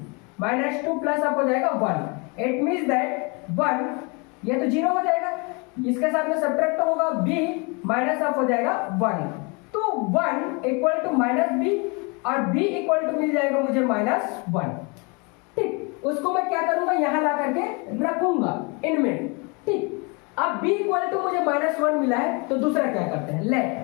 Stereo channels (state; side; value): quieter; right; 30.5 dB